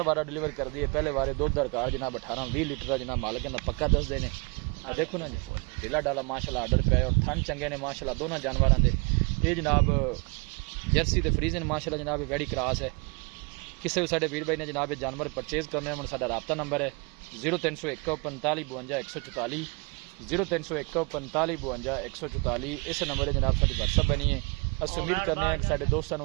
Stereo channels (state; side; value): quieter; left; 30.8 dB